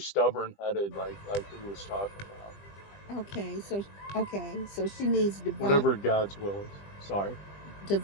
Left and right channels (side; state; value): right; late; 20 ms